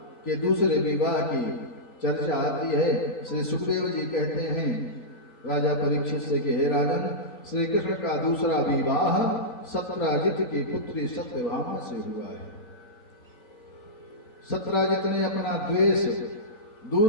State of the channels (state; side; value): late; right; 3.9 ms